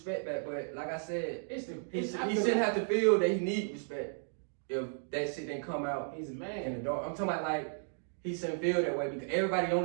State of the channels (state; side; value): silent; left; digital silence